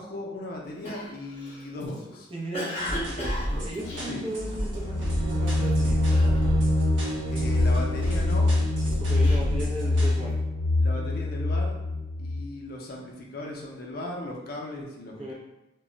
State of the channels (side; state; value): both; normal; correlation 0.85